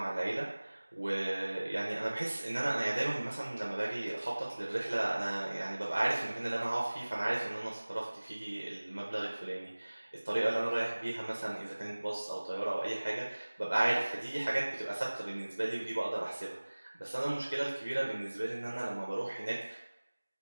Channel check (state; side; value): inverted; both; correlation -1.00